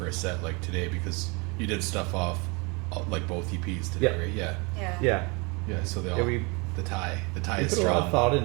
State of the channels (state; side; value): quieter; left; 29.4 dB